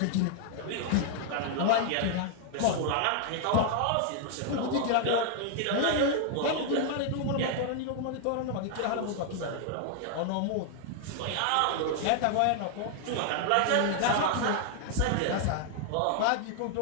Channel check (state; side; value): different; both; correlation 0.00